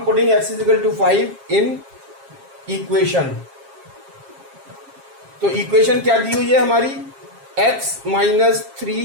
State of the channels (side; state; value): left; late; 7.4 ms